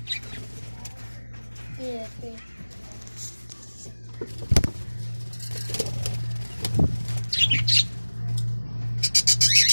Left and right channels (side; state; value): both; inverted; correlation -1.00